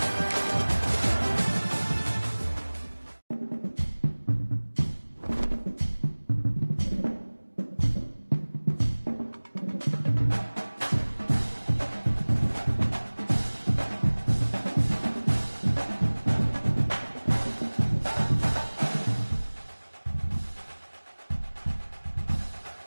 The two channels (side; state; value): both; inverted; correlation -1.00